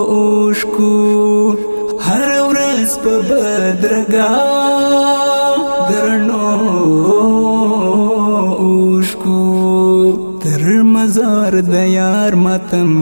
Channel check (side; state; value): both; inverted; correlation -1.00